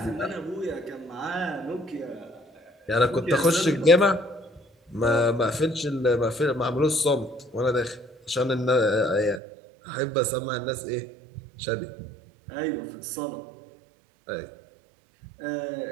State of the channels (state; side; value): drops out; left; at 9.4 s